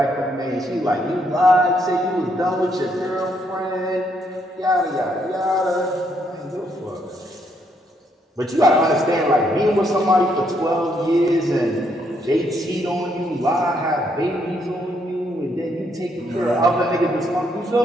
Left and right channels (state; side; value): normal; both; correlation 0.73